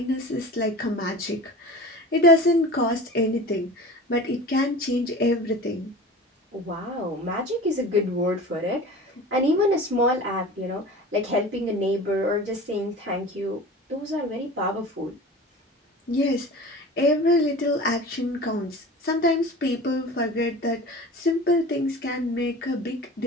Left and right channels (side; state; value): both; normal; correlation 0.37